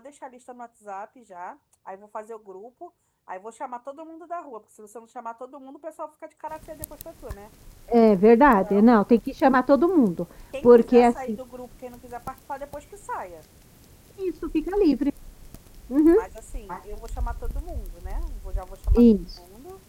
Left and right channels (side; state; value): both; identical; correlation 1.00